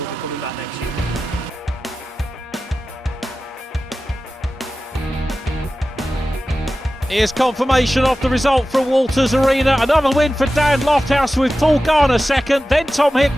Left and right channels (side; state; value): both; normal; correlation 0.94